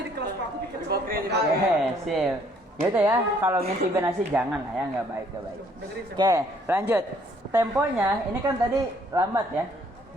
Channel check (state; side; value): normal; both; correlation 0.63